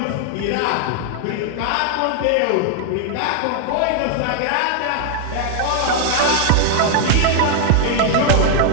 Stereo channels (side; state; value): both; different; correlation 0.00